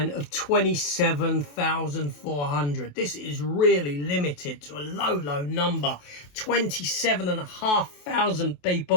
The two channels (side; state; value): right; late; 28 ms